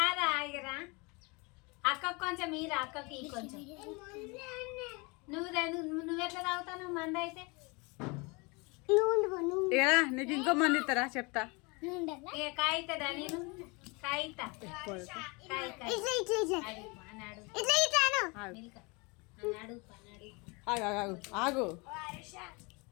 రా ఇగరా. అక్కకు కొంచెం ఈరా, అక్కకి కొంచెం. నువ్వెట్లా తాగుతావు మంద అయితే? ఇగరా నీకు ఇంకో మంది ఇస్తారా చెప్తా. ఇక కాయితదా? నేను కాయితా. ఆగు.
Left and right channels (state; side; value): quieter; right; 28.3 dB